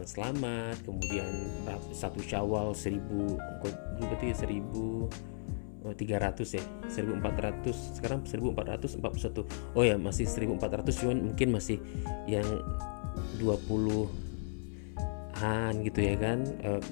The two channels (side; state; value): right; silent; 54 dB below the other